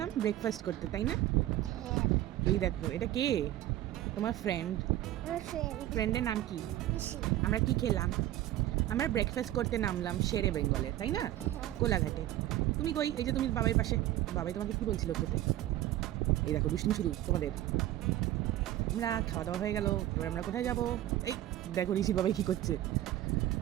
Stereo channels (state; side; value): quieter; left; 14.0 dB